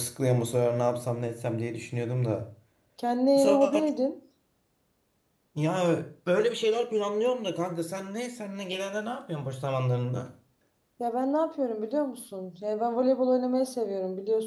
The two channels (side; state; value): both; identical; correlation 1.00